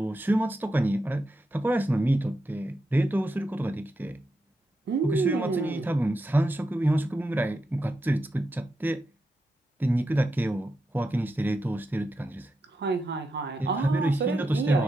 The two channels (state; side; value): normal; both; correlation 0.87